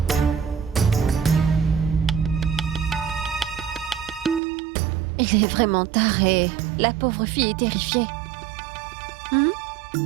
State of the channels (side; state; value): left; drops out; at 4.4 s